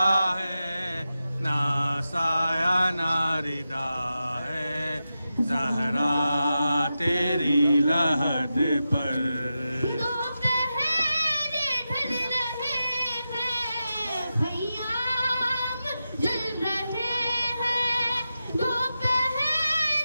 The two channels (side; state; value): both; inverted; correlation -0.91